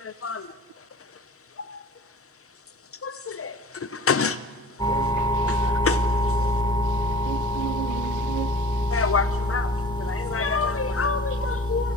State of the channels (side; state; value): both; normal; correlation 0.42